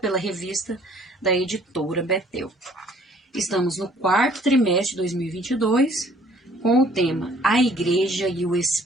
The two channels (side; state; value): both; normal; correlation 0.58